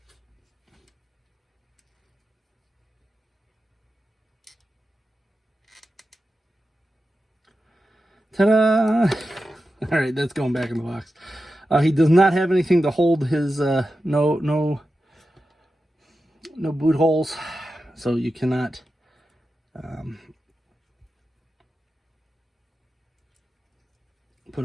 Ta-da! All right, that's going back in the box. He does not have anything to hold his no boot holes, so you cannot put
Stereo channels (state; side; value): normal; both; correlation 0.91